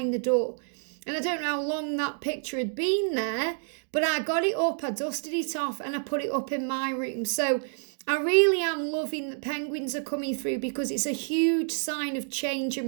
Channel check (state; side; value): silent; left; 59 dB below the other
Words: the door. And I don't know how long that picture had been there, but I got it up, I dusted it off, and I put it up in my room. So I really am loving that penguins are coming through, because it's a huge sign of change